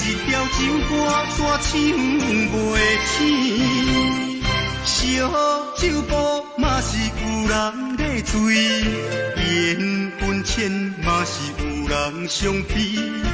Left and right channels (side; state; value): both; identical; correlation 1.00